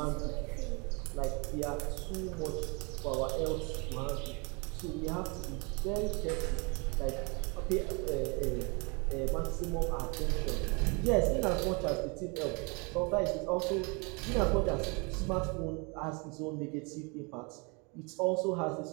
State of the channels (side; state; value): left; quieter; 31.0 dB